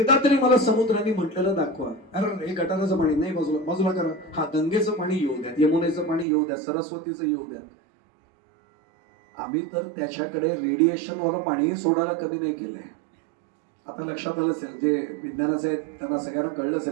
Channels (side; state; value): left; drops out; at 6.2 s